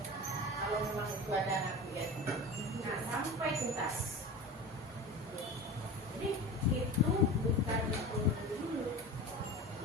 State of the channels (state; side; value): normal; both; correlation 0.31